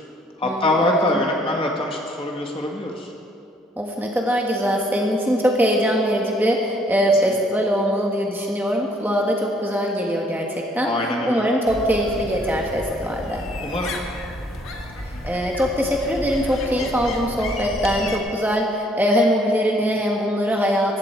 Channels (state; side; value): normal; both; correlation 0.64